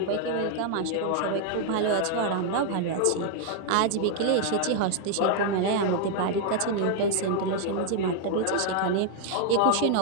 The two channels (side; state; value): both; different; correlation 0.00